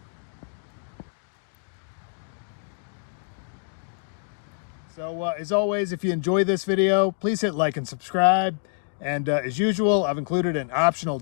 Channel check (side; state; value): right; silent; digital silence